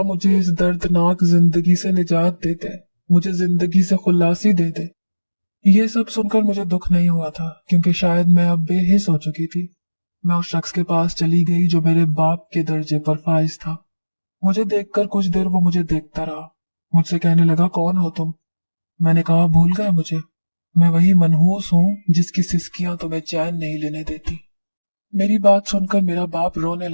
मुझे इस दर्दनाक जिंदगी से निजात दे दे, मुझे जिंदगी से खुलासी दे दे। ये सब सुनकर मुझे दुख नहीं हुआ था, क्योंकि शायद मैं अब बेहिस हो चुकी थी। मैं उस शख्स के पास चली गई जो मेरे बाप के दर्जे पर फाइज था। मुझे देखकर कुछ देर वो मुझे देखता रहा। मुझसे कहने लगा, कौन हो तुम? मैंने कहा, भूल गए मुझे? میں وہی منحوس ہوں جس کی سسکیاں تمہیں چین نہیں لینے دیتی۔ میری بات سن کر میرا باپ رونے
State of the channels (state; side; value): inverted; both; correlation -1.00